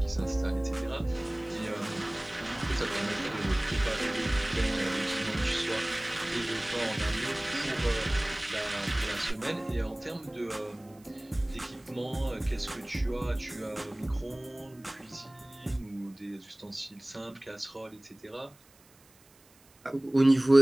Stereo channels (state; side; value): noise; right; hiss, 28 dB below the sound